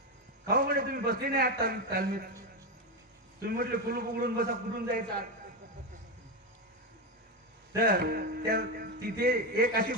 खाऊ म्हणे तुम्ही बसले नाही आत तालमीत, तुम्ही म्हटले कुलूप उघडून बसा, कुठून जायचं? तर तिथे एक अशी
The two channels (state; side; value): normal; both; correlation 0.11